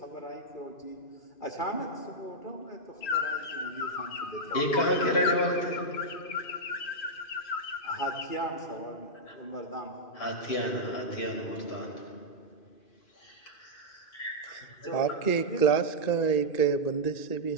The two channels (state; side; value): late; right; 2.5 ms